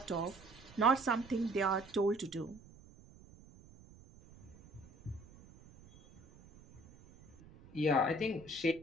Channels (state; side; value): noise; right; rumble, 23 dB below the sound